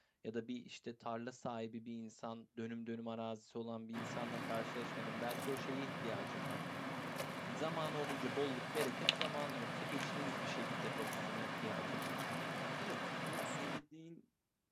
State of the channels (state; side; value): identical; both; correlation 1.00